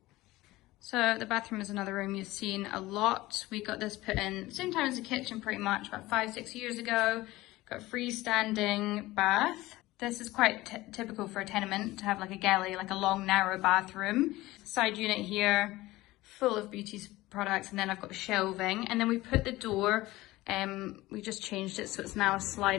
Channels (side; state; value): right; quieter; 18.4 dB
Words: So the bathroom is another room you've seen a lot. We got this put in same time as the kitchen pretty much, about 5-6 years ago. Got a freestanding bath. This is quite typical for a tenement to have a galley, a long narrow bathroom. Side unit here, full of beauty products, and then I've got shelving. And then we put the door, we just changed it so it's now a